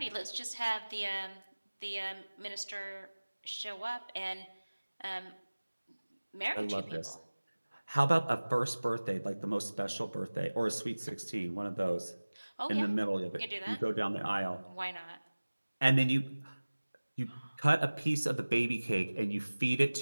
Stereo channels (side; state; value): both; inverted; correlation -1.00